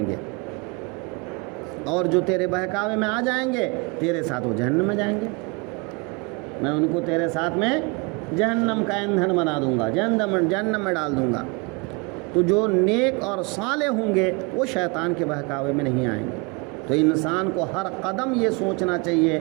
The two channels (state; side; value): quieter; left; 29.2 dB